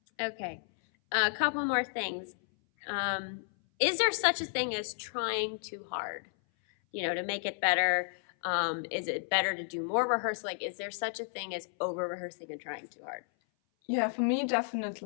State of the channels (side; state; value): right; silent; 56 dB below the other